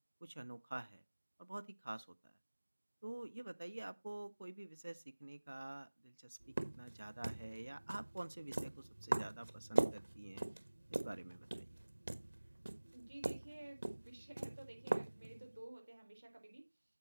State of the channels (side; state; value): both; inverted; correlation -1.00